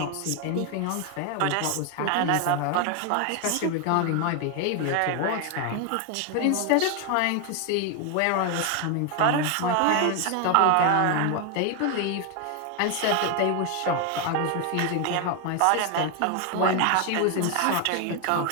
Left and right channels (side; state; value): both; different; correlation 0.01